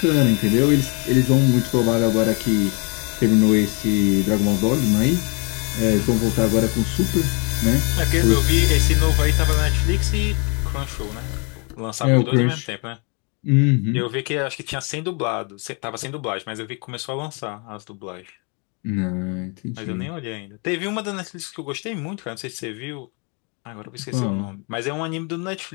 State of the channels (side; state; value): right; quieter; 33.8 dB